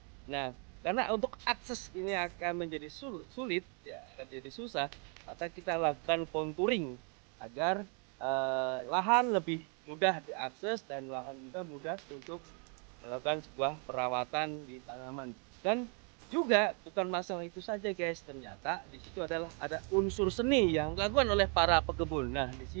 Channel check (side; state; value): left; quieter; 38.6 dB